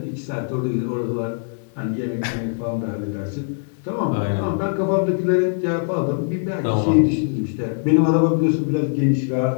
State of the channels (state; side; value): silent; right; digital silence